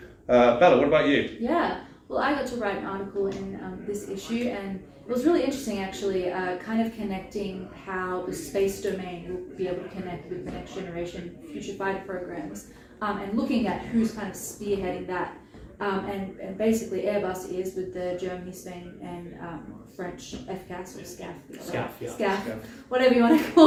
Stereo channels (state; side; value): identical; both; correlation 1.00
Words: Bella, what about you? Yeah, well, I got to write an article in this issue, and it was really interesting actually, kind of connecting how the space domain will be able to connect with the next generation future fighter programs, and looking at who's kind of spearheading that. And basically Airbus is with the Germany, Spain and French FCAS or SCAF, whatever you want to